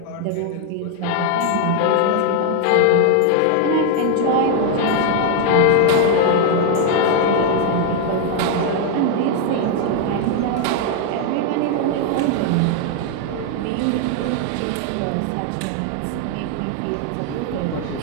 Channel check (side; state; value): both; different; correlation 0.00